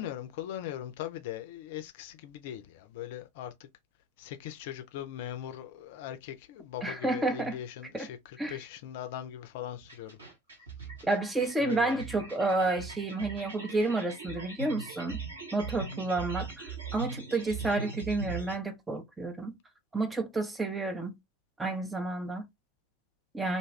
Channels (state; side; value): normal; both; correlation 0.59